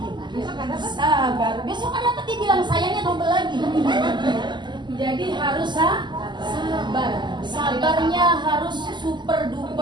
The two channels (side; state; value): left; late; 0.21 ms